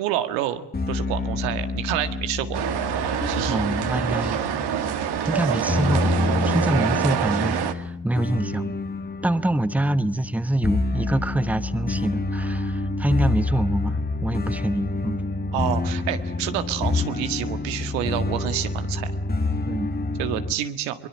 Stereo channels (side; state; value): both; normal; correlation 0.63